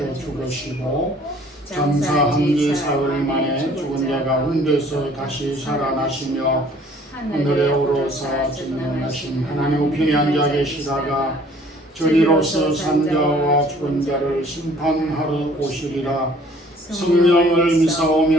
죽으시고 장사 한지 사흘 만에 죽은 자 가운데서 다시 살아나시며 하늘에 오르사 전능하신 하나님 우편에 앉아 계시다가 저리로서 산자와 죽은 자를 심판하러 오시리라. 성령을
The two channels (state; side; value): normal; both; correlation 0.55